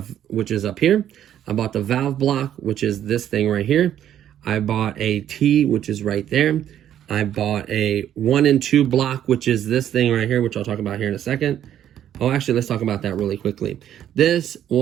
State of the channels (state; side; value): quieter; left; 10.7 dB